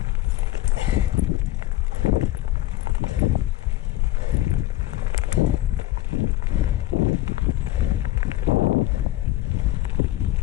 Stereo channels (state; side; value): quieter; right; 16.1 dB